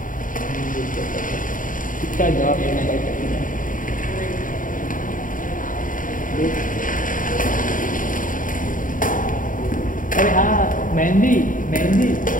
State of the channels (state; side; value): late; right; 0.39 ms